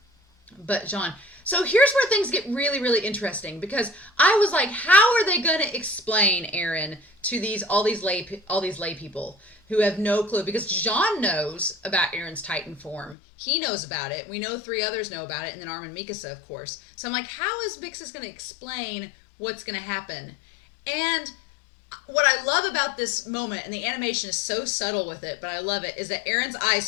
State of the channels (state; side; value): drops out; right; at 13.2 s